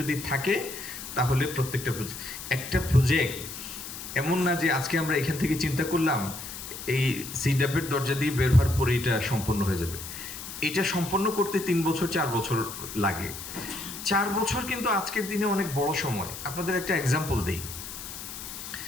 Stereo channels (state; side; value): noise; left; hiss, 10 dB below the sound